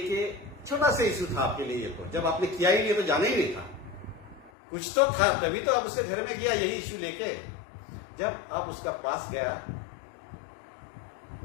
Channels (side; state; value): right; drops out; at 4.5 s